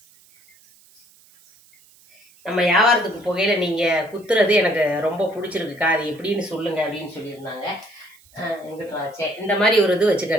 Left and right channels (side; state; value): right; noise; hiss, 29 dB below the sound